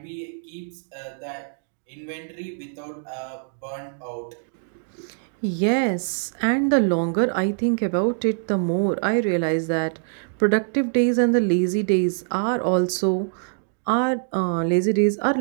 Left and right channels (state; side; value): silent; left; digital silence